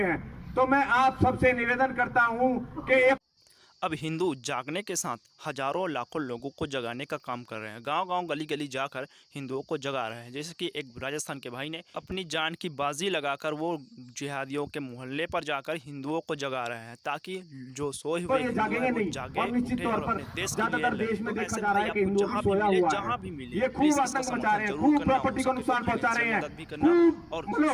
तो मैं आप सबसे निवेदन करता हूं कि अब हिंदू जागने के साथ हजारों लाखों लोगों को जगाने का काम कर रहे हैं। गांव-गांव गली-गली जाकर हिंदुओं को जगा रहे हैं। जैसे कि एक राजस्थान के भाई ने अपनी जान की बाजी लगाकर वो जिहादियों के मोहल्ले पर जाकर हिंदुओं को जगा रहे हैं, ताकि जो सोए हुए जागेंगे नहीं। और निश्चित तौर पर ज्यादातर देश में देखा जा रहा है कि हिंदू अभी सोया हुआ है। ये खूब आतंक मचा रहे हैं, खूब प्रॉपर्टी को नुकसान पहुंचा रहे हैं, खूब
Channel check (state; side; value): identical; both; correlation 1.00